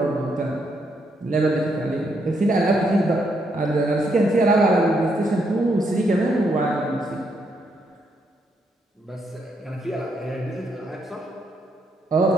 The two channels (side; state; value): both; normal; correlation 0.76